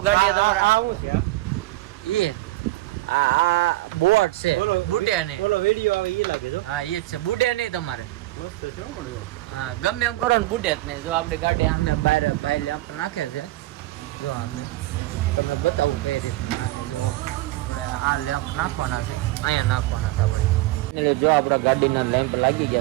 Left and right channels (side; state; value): left; quieter; 17.9 dB